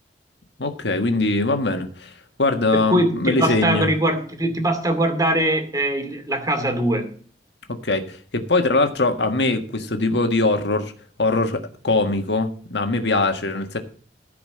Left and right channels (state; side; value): normal; both; correlation 0.21